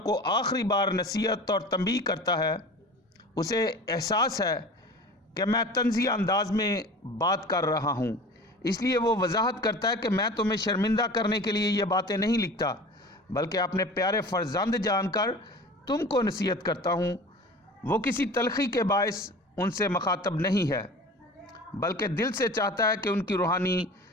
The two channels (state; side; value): normal; both; correlation 0.39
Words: کو آخری بار نصیحت اور تنبیہ کرتا ہے۔ اسے احساس ہے کہ میں طنزیہ انداز میں بات کر رہا ہوں، اس لیے وہ وضاحت کرتا ہے کہ میں تمہیں شرمندہ کرنے کے لیے یہ باتیں نہیں لکھتا، بلکہ اپنے پیارے فرزند جان کر تم کو نصیحت کرتا ہوں۔ وہ کسی تلخی کے باعث ان سے مخاطب نہیں ہے، بلکہ دل سے چاہتا ہے کہ ان کی روحانی